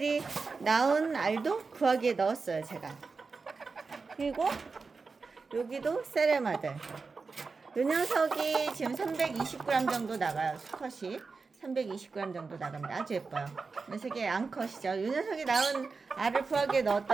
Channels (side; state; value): left; quieter; 4.5 dB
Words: 낳은 알도 구하기에 넣었어요 제가. 그리고 여기도 세레마들. 요 녀석이 지금 320g 정도 나가요. 수컷이 320g 정도 나갑니다. 아주 예뻐요. 녀석이 암컷이죠. 요 녀석이 낳은 알을 부하기에